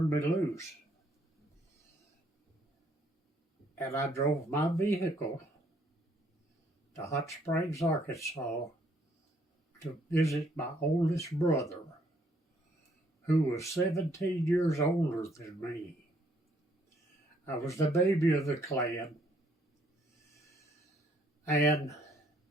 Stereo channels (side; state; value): both; normal; correlation 0.67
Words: me loose. And I drove my vehicle to Hot Springs, Arkansas to visit my oldest brother, who was 17 years older than me. I was the baby of the clan. And